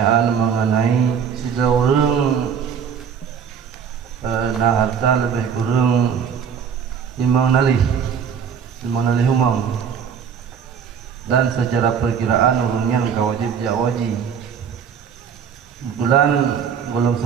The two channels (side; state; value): left; quieter; 7.3 dB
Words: mengenai seseorang nah harta lebih kurang 5 nalih humang, dan secara perkiraan urunnya wajib jawaji. Kebetulan belum